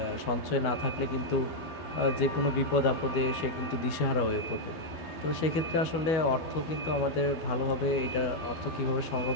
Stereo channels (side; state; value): right; late; 12 ms